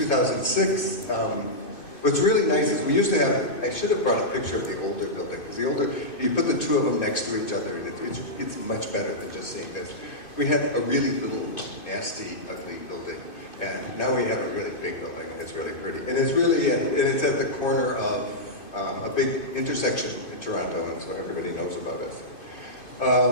What's really nice is we used to have, I should have brought a picture of the older building, because the older, you put the two of them next to each other, and it's much better than just seeing this. We had a really little, nasty, ugly building, and now we have a really big building, and it's really pretty. And it's really, and it's at the corner of a big intersection in Toronto, and so everybody knows about us.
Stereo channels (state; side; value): late; right; 2.5 ms